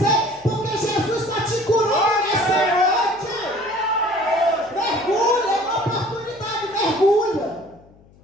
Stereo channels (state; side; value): noise; left; hum, 27 dB below the sound